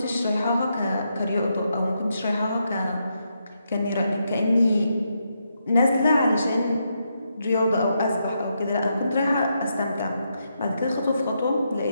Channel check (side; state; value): both; inverted; correlation -0.81